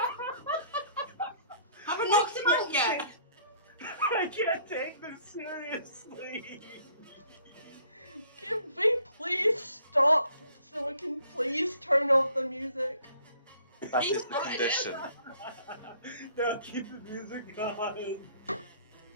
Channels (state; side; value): inverted; both; correlation -0.59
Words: Please turn off the music. That He is the started it. condition. No, keep the music going.